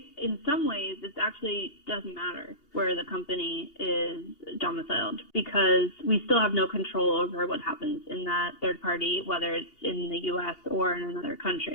in some ways it actually doesn't matter where the company is domiciled, because we still have no control over what happens in that third party, whether it's in the U.S. or in another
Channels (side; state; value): right; late; 2.8 ms